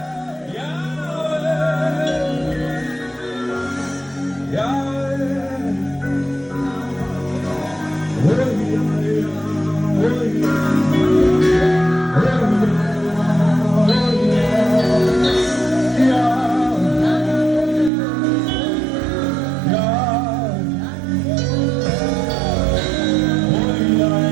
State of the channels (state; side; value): drops out; left; at 17.9 s